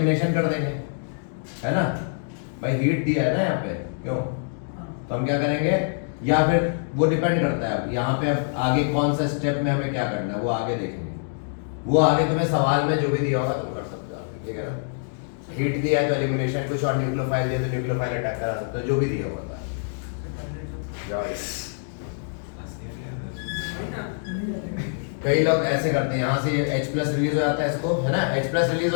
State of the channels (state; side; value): silent; right; digital silence